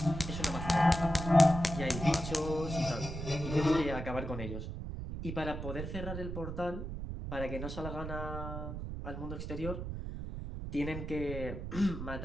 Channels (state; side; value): noise; right; rumble, 6 dB below the sound